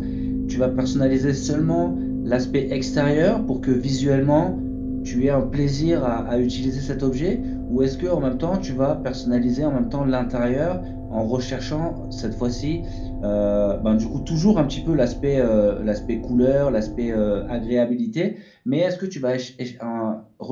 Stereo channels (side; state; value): both; identical; correlation 1.00